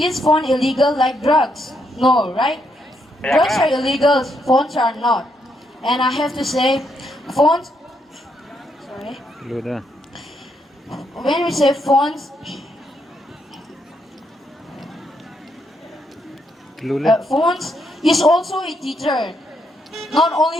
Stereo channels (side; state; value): both; normal; correlation 0.77